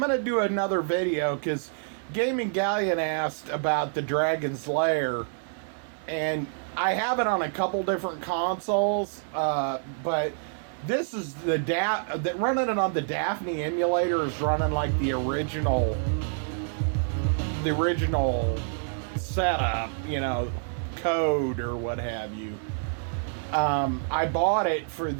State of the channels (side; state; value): left; silent; digital silence